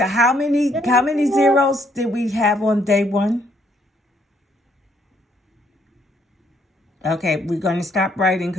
how many zeros did we have on day 1? Okay, we're going to stop writing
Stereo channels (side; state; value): both; normal; correlation 0.69